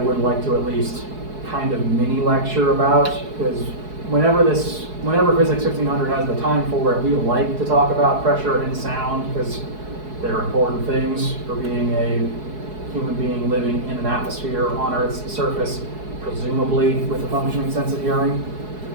like to at least kind of mini lecture about, because whenever Phys1500 has the time for it, we like to talk about pressure and sound, because they're important things for being a human being living in an atmosphere on Earth's surface, presumably with a functioning sense of hearing.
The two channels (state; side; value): late; left; 4.7 ms